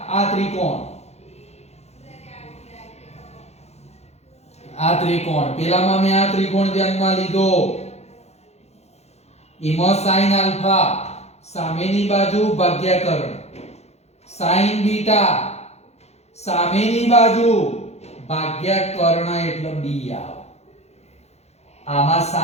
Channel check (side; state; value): right; late; 0.31 ms